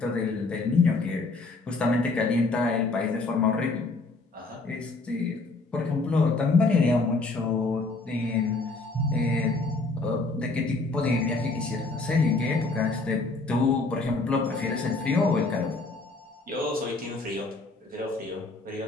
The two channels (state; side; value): quieter; right; 3.5 dB